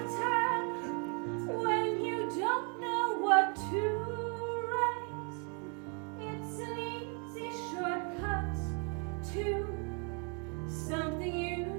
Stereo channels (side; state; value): left; quieter; 37.4 dB